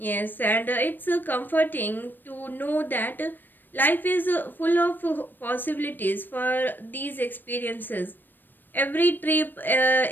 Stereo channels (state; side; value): late; right; 0.092 ms